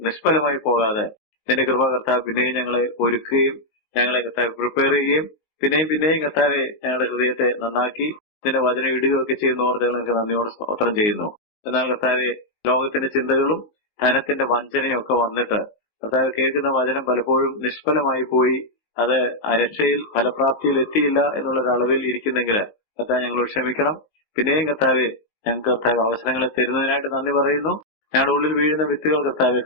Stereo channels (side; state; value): right; late; 19 ms